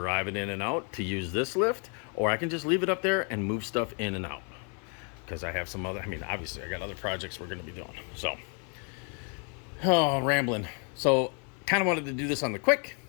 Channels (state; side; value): quieter; right; 38.5 dB